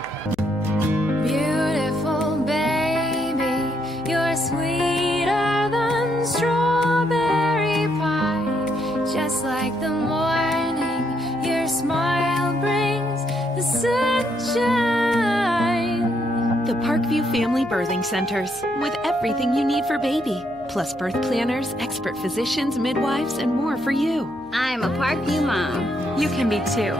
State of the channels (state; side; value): noise; left; hum, 27 dB below the sound